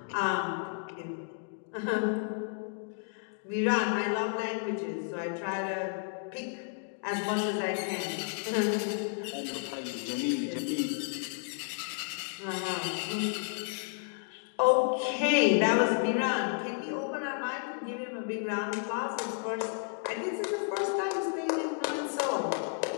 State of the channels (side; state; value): right; silent; 55 dB below the other